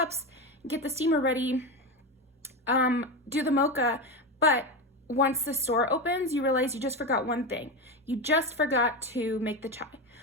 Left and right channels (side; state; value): both; normal; correlation 0.18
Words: get the steamer ready, do the mocha, but once the store opens, you realize you just forgot one thing. You just forgot to make the chai,